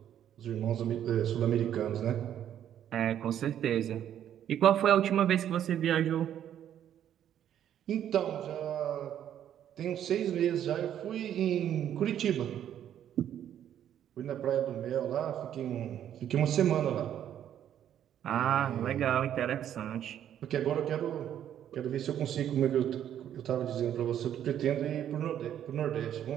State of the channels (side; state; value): left; quieter; 10.4 dB